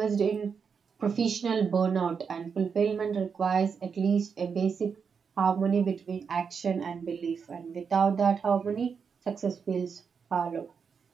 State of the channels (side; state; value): left; quieter; 6.1 dB